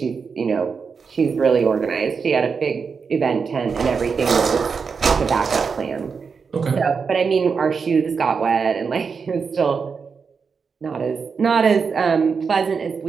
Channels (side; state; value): left; quieter; 5.5 dB